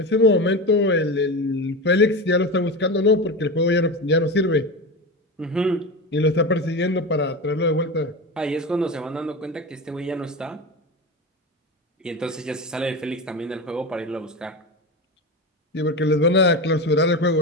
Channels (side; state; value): both; normal; correlation 0.23